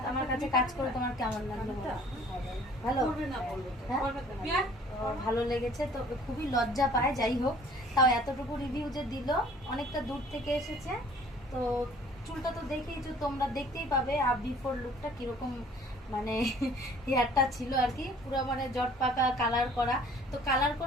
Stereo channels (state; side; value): normal; both; correlation 0.53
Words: আমার কাছে কাজ করে তোমার কেমন লাগলো? ভালো, হ্যাঁ ভালো লেগেছে তো, খুবই লজ্জা পায়। যাই হোক, তাও এতটুকু রিভিউ যে দিল, অনেকটা দূর থেকে এসেছে। তো চুলটা তো দেখেইছো তোমরা, দেখতেই পাবে আপ বিফোর লুকটা কিরকম, মানে হেয়ারটা ছিল আর কি পুরো মানে জট পাকা কালার করা। তো কালার